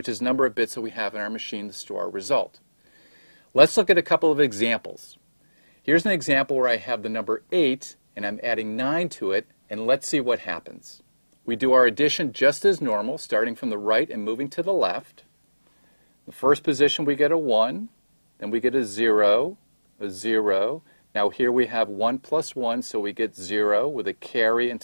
is the number of bits that we have in our machine to store our result. Let's look at a couple of examples. Here's an example where I have the number 8 and I'm adding 9 to it, and let's see what happens. We do our addition just as normal, starting from the right and moving to the left. The first position we get a 1, then we get a 0, a 0. Now here we have 1 plus 1, so we get 0 with a carry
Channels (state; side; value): inverted; both; correlation -1.00